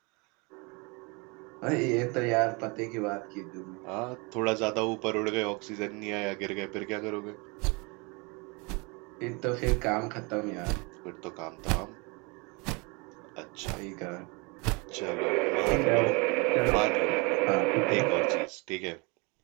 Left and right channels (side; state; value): left; quieter; 29.1 dB